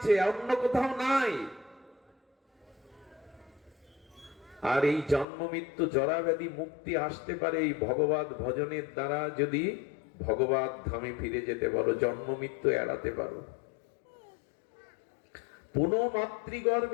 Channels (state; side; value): drops out; right; at 5.2 s